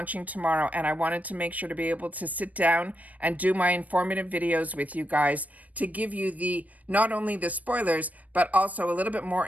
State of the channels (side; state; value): left; late; 0.073 ms